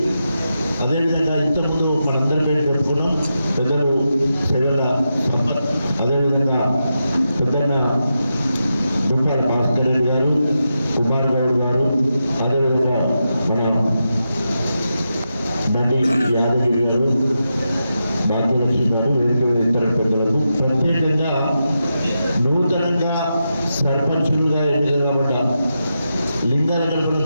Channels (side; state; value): both; inverted; correlation -0.87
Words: అదేవిధంగా ఇంతకుముందు మనందరి పేరు చెప్పుకున్నాం పెద్దలు సెలవుల సంపత్, అదేవిధంగా పెద్దన్న దుంపాల భాస్కర్ రెడ్డి గారు, కుమార్ గౌడ్ గారు, అదేవిధంగా మన నటి యాదగిరి గారు, భాగ్యలక్ష్మి గారు, వేదిక ఇతర పెద్దలకు, ప్రత్యేకంగా నూతనంగా సర్పంచులుగా ఎన్నిక కాబట్ట లింగాలగంపలో